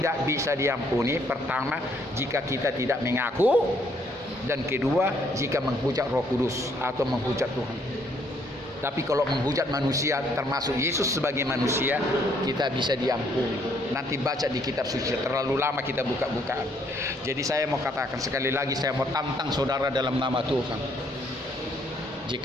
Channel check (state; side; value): normal; both; correlation 0.68